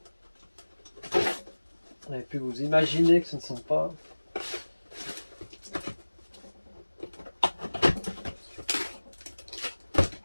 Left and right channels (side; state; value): both; inverted; correlation -1.00